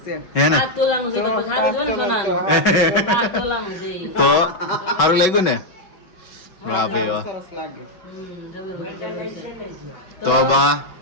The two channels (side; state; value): right; late; 5.3 ms